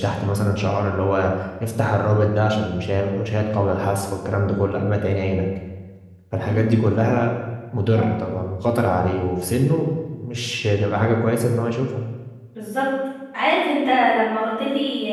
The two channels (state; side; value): identical; both; correlation 1.00